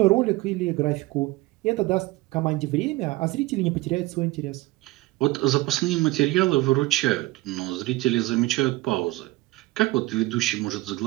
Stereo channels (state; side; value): quieter; left; 19.7 dB